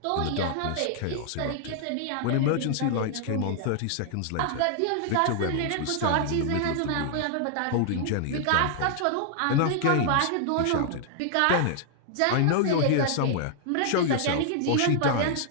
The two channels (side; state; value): both; different; correlation -0.01